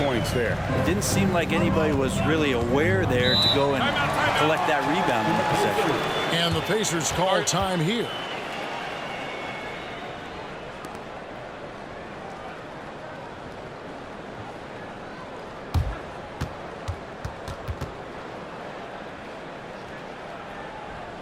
points there. It didn't seem like anybody was really aware there to go and collect that rebound in the possession. And the Pacers call time here.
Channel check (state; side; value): identical; both; correlation 1.00